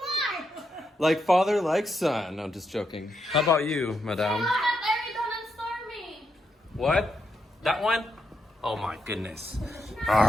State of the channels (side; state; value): both; normal; correlation 0.82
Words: smart. Like father, like son. No, just joking. How about you, madam? Eridon and Stormy. What? That one? Oh my goodness.